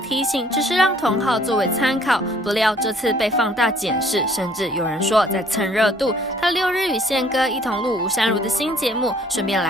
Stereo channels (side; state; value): both; normal; correlation 0.59